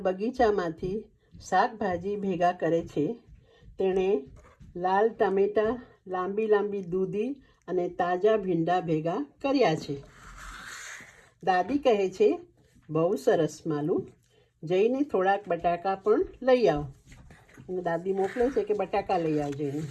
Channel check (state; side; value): identical; both; correlation 1.00